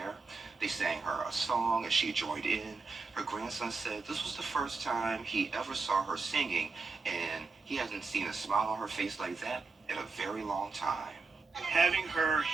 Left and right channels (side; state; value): left; quieter; 4.3 dB